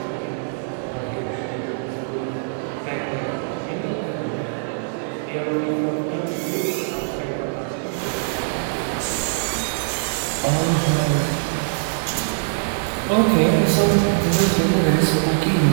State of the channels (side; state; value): left; silent; digital silence